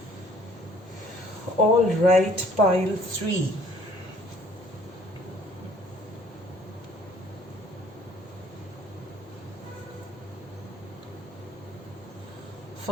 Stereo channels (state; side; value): normal; both; correlation 0.57